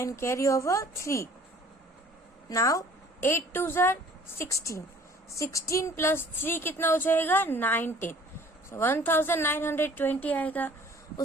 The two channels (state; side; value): normal; both; correlation 0.52